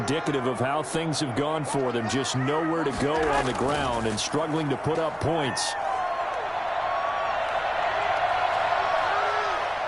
of how things have gone for them. Just nowhere to go on the ground and struggling to put up points.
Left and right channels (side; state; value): both; identical; correlation 1.00